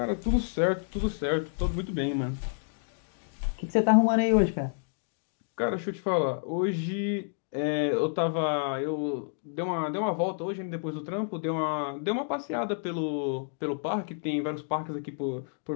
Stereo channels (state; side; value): silent; right; digital silence